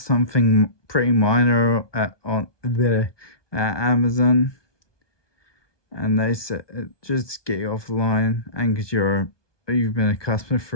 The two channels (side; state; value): right; late; 1.2 ms